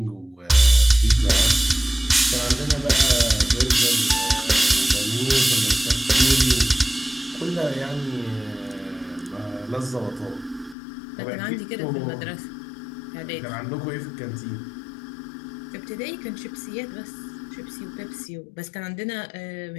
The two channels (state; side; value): drops out; right; at 10.8 s